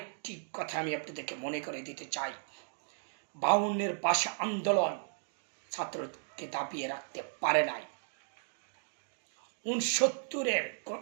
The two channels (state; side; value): silent; left; digital silence